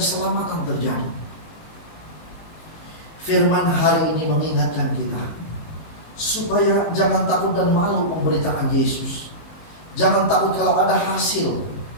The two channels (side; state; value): right; late; 19 ms